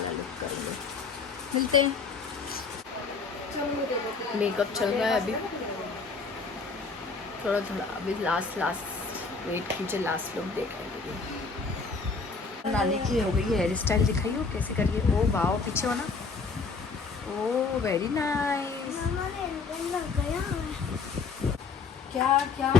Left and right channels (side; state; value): right; quieter; 4.6 dB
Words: लुक करेंगे। मिलते हैं। मेकअप चल रहा है अभी, थोड़ा अभी लास्ट वेट कीजिए, लास्ट लुक देखेंगे। नानी की हो गई है हेयर स्टाइल, दिखाइए वो कैसे करिए। ओ वाओ, पीछे हो ना। ओ वेरी नाइस। लग गया है। क्या क्या